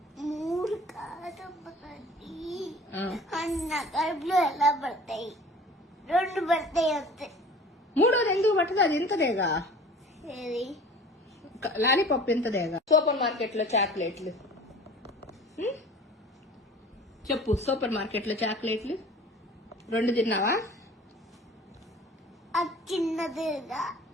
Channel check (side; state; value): both; normal; correlation 0.44